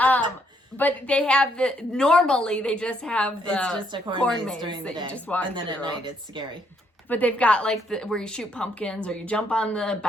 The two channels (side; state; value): both; normal; correlation 0.72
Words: But they have normally they just have the it's just a corn maze during the day. You just walk and then through. at night it's scary. But they've got like where you shoot pumpkins or you jump on the